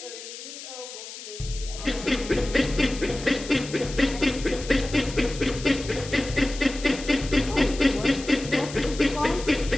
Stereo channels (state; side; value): noise; left; hiss, 12 dB below the sound